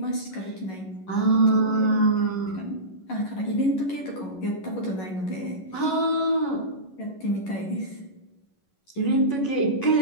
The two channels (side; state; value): right; late; 11 ms